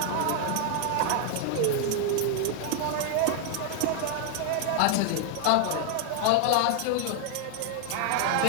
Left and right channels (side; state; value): both; different; correlation 0.00